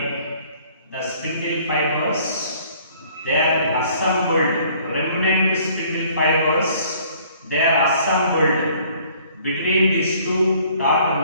the spindle fibers, they are assembled, remnant spindle fibers, they are assembled between these two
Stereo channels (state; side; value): inverted; both; correlation -0.57